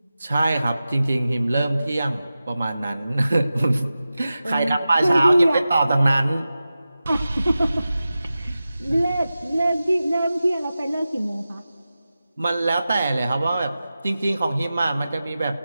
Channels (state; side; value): inverted; both; correlation -0.94